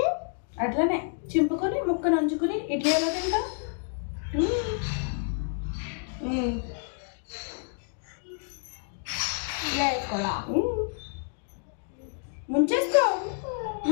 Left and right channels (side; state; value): right; silent; 59 dB below the other